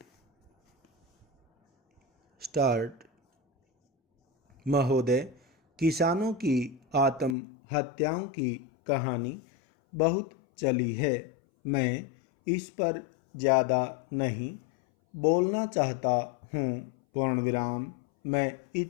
स्टार्ट। महोदय, किसानों की आत्महत्याओं की कहानी बहुत चली है। मैं इस पर ज़्यादा नहीं बोलना चाहता हूँ। पूर्ण विराम। मैं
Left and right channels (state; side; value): drops out; right; at 7.4 s